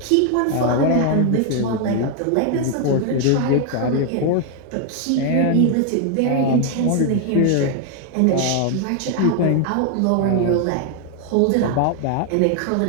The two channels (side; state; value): both; different; correlation 0.01